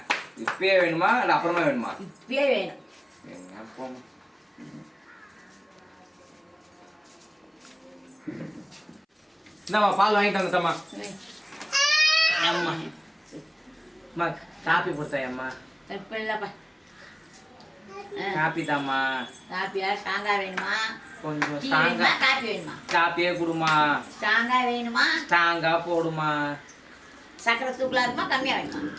இப்பயே வேணுமா இல்லை அப்புறமா வேணுமா? இப்பயே வேணும். போமா. இந்தாம்மா பால் வாங்கிட்டு வந்துட்டம்மா. அம்மா அம்மா காப்பி கொடுத்தேன் அம்மா. இப்போ இல்லைப்பா. காப்பி தாம்மா. காப்பியா? ஸ்ட்ராங்காக வேணுமா? கொஞ்சம் டீ ஸ்ட்ராங்கா. வேணுமா? காப்பி வேணுமா? காப்பியே கொடுமா. ஸ்ட்ராங்காக வேணுமா? ஸ்ட்ராங்கா போடுமா. சக்கரை தூக்கலாக இருக்குமா? கம்மியாக வேணுமா?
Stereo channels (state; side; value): identical; both; correlation 1.00